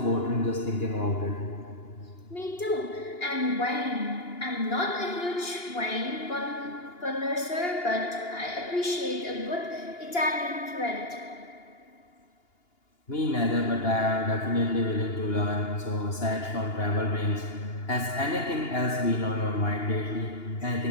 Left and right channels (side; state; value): right; late; 2.9 ms